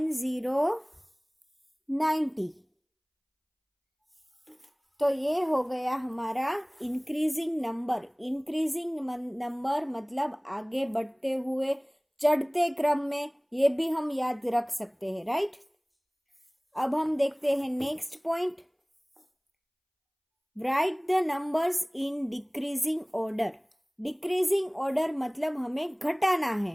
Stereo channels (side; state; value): both; identical; correlation 1.00